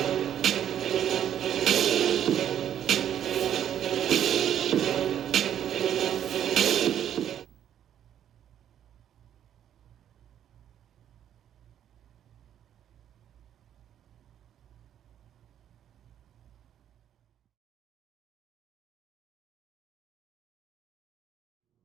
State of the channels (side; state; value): left; quieter; 10.1 dB